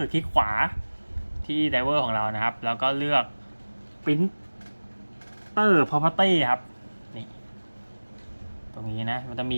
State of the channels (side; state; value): both; inverted; correlation -1.00